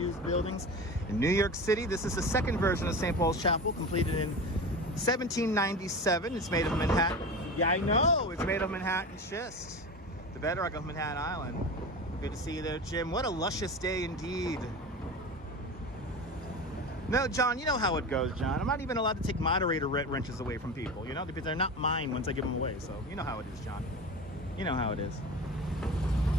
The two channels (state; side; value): normal; both; correlation 0.29